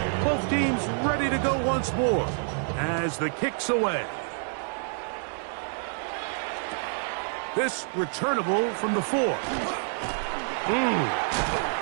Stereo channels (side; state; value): left; silent; 60 dB below the other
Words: Both teams ready to go once more as the kick's away. This returnable from the 4.